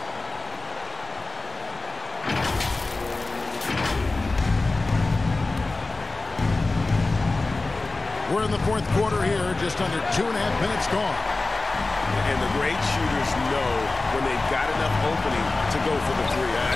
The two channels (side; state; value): right; quieter; 3.2 dB